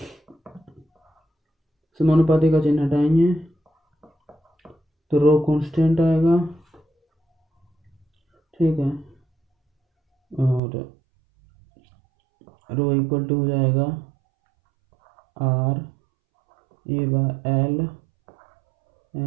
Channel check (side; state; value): left; drops out; at 10.6 s